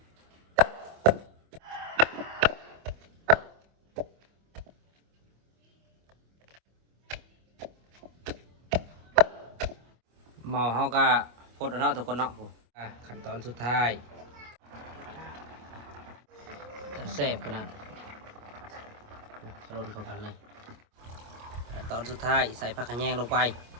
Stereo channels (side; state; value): left; late; 25 ms